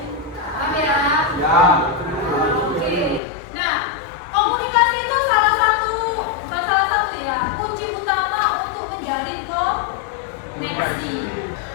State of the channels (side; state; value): right; drops out; at 3.2 s